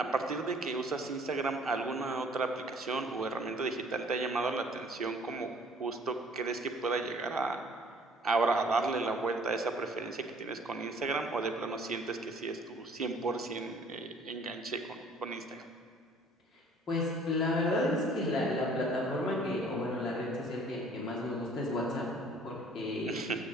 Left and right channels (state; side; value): normal; both; correlation 0.55